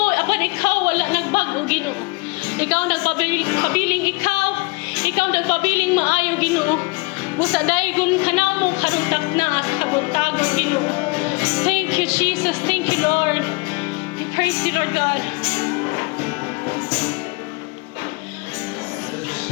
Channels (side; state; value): right; quieter; 27.4 dB